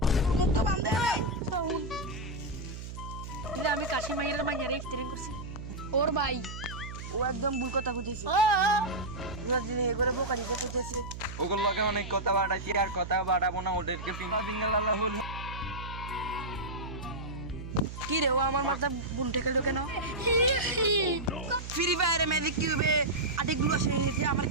মুখ তো বান্ধে নাই। আমি কাশি মাইয়ের মাইয়ারে ইফতারিং করছি ওর ভাই। ও একদম ভুল কথা কইতেছে। রোজ দিন এ করে বোকা দিতে কইতেছে। ওগুলো লগে অনেক কথা বাড়াইছি আর কথা বাড়াবো না, ওদেরকে পিঙ্গা দিঙ্গল আল্লাহ হুল। কি রে ও আমার মাথা বুন ঠেকালো কেন? ফ্রি ফায়ারে ম্যাজিক কিউবে আটিগুলো আসে নিয়েছে, আমার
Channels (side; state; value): right; noise; hum, 9 dB below the sound